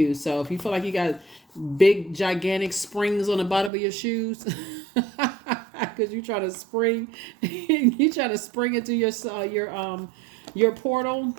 So if you feel like you got big gigantic springs on the bottom of your shoes because you try to spring into your portal,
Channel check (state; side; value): drops out; left; at 3.7 s